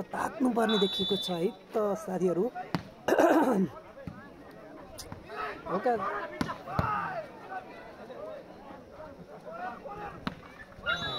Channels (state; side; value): identical; both; correlation 1.00